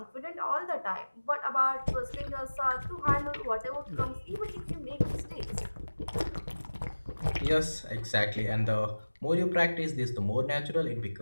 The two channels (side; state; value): both; inverted; correlation -1.00